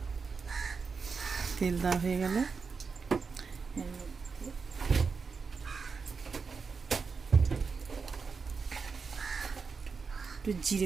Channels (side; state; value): left; quieter; 5.1 dB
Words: তেল দেওয়া হয়ে গেল, একটু